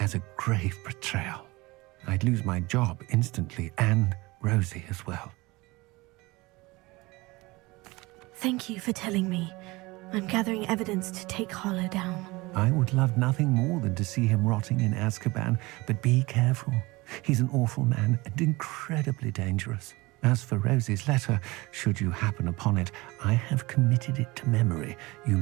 a grave betrayal. I'd lose my job instantly, and Rosie as well. Thank you for telling me. I'm gathering evidence to take Harlow down. I would love nothing more than to see him rotting in Azkaban, but be careful. He's an awful man and incredibly dangerous. As for Rosie's letter, should you happen upon it, I have committed it to memory. You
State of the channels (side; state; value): left; quieter; 22.4 dB